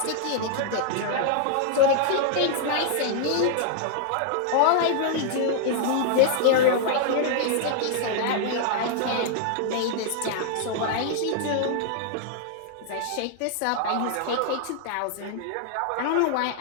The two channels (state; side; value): different; both; correlation -0.01